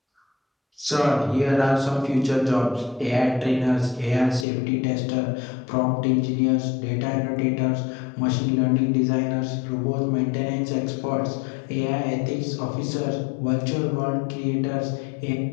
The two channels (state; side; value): drops out; right; at 4.5 s